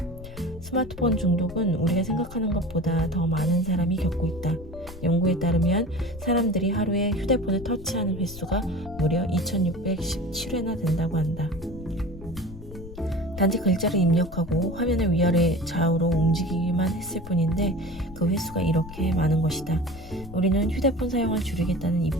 스마트폰 중독은 우리가 생각하는 것보다 더 많은 사람이 겪고 있다. 연구에 따르면 사람들이 하루에 휴대폰을 터치하는 횟수가 무려 2617회나 된다고 한다. 단지 글자를 입력하고 화면을 위아래 좌우로 움직이기만 했을 뿐인데 그 횟수가 이렇게 많은 것이다. 우리는 휴대폰 사용을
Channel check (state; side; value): noise; left; rumble, 15 dB below the sound